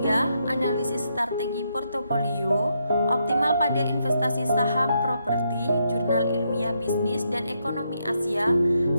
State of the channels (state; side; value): inverted; both; correlation -0.79